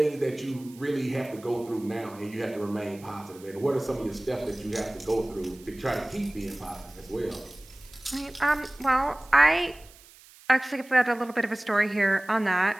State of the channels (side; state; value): right; noise; hiss, 23 dB below the sound